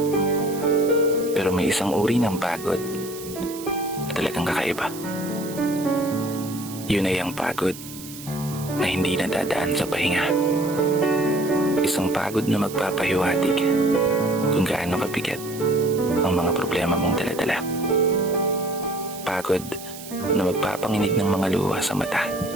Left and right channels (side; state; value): right; noise; hiss, 14 dB below the sound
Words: Pero may isang uri ng pagod na talagang kakaiba. Yun ay ang pagod na hindi nadadaan sa pahinga. Isang pagod na magpapahiwatig kung gaano kabigat ang mga problema mong daladala. Pagod na magpapanginig ng mga luha sa mata.